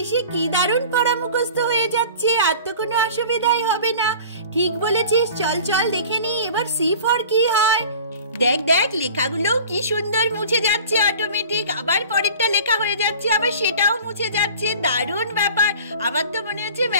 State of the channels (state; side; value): inverted; both; correlation -0.43